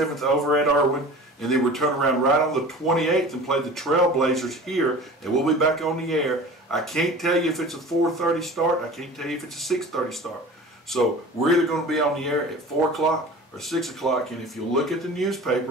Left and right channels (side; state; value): both; normal; correlation 0.39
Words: over at Irwin, and then we turn around right on the 28th and play the Trailblazers here, and we'll be back on the air. I can't tell you if it's a 4:30 start. I can't tell you if it's a 6:30 start. So we're either going to be on the air at 4 o'clock or 6 o'clock, and if you look at the